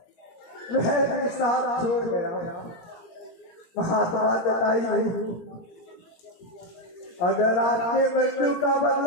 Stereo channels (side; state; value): right; late; 18 ms